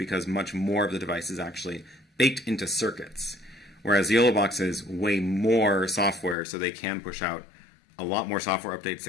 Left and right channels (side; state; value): right; drops out; at 6.4 s